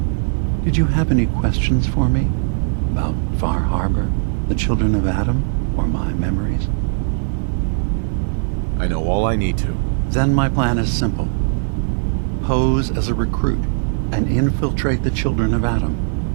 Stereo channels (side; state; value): left; silent; digital silence